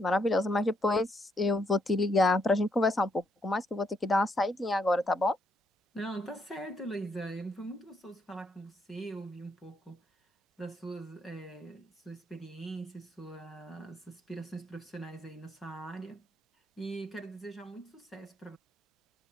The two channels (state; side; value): normal; both; correlation 0.74